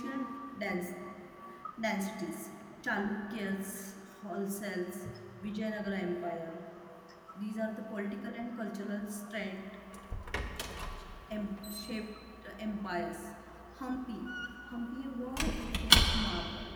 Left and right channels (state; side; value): identical; both; correlation 1.00